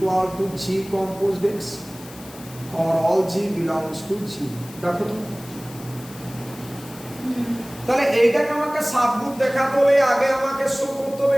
to G compose X or all G belongs to G. দেখো তো তাহলে এইটাকে আমাকে সাবগ্রুপ দেখাতে হলে আগে আমাকে শো করতে হবে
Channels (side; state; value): left; noise; hiss, 19 dB below the sound